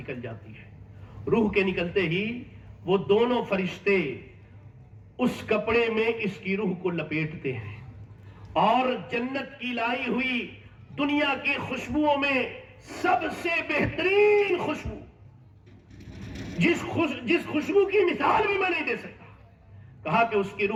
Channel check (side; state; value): both; identical; correlation 1.00